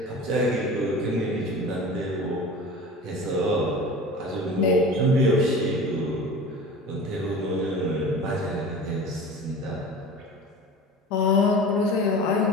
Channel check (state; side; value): normal; both; correlation 0.37